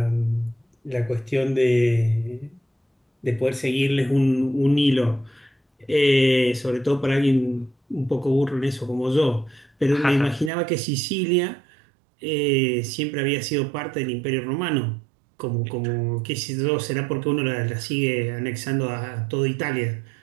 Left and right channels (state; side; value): drops out; left; at 10.5 s